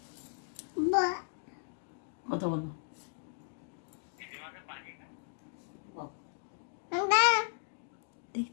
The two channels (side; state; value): right; silent; digital silence